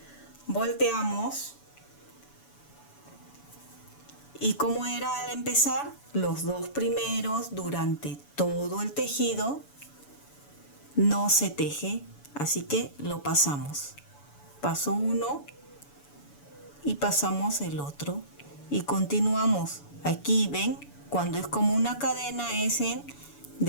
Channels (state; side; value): late; right; 7.0 ms